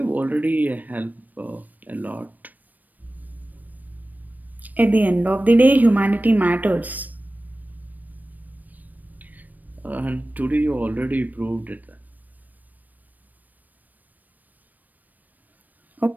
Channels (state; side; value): late; left; 0.084 ms